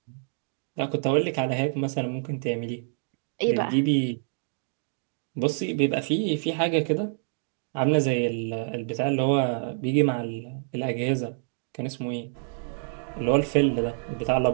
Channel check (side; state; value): left; silent; digital silence